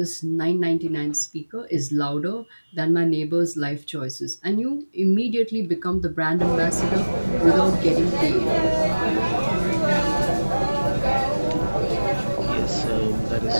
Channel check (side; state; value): both; inverted; correlation -1.00